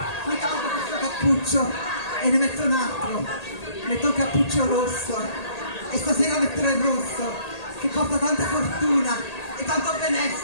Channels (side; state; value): right; late; 1.8 ms